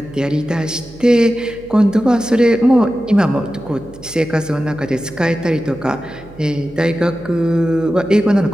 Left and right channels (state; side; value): noise; right; hum, 21 dB below the sound